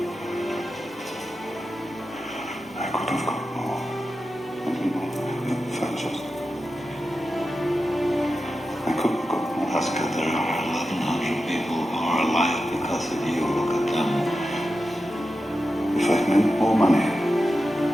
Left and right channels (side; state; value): both; normal; correlation 0.91